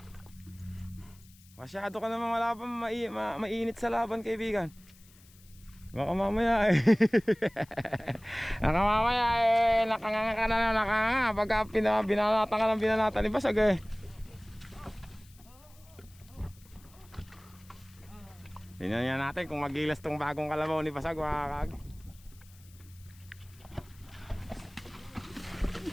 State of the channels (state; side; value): noise; left; hiss, 26 dB below the sound